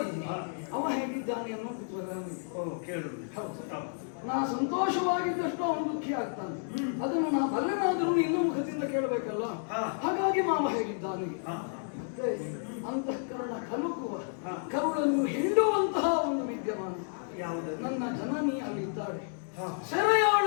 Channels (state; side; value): silent; right; 57 dB below the other